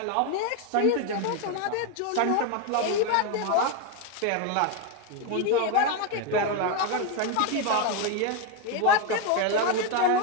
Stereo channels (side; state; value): both; different; correlation 0.02